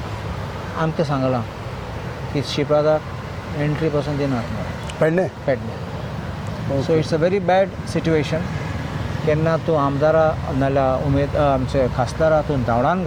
आमकां सांगलां की श्रीपादाक एंट्री पासून दिनात Pedne. So it's a very bad situation. केन्ना तूं आमदारा नाल्यार आमचे खासदारा तूं धांवडावन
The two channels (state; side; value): identical; both; correlation 1.00